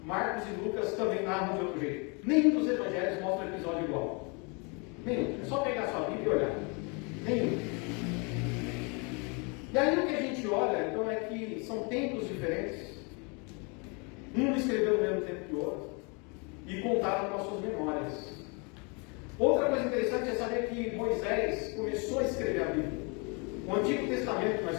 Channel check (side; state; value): right; quieter; 32.6 dB